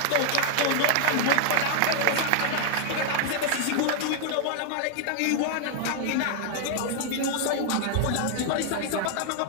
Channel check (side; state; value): both; different; correlation 0.00